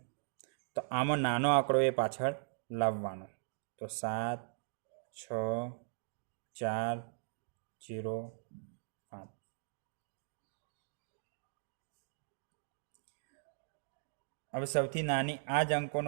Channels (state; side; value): silent; left; digital silence